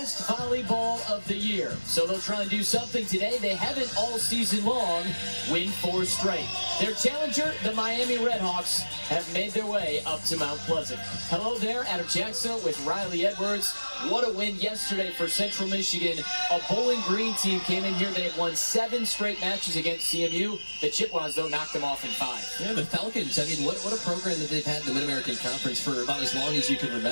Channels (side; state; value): both; inverted; correlation -1.00